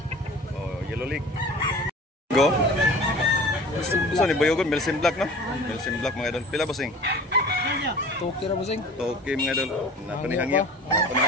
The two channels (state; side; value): normal; both; correlation 0.42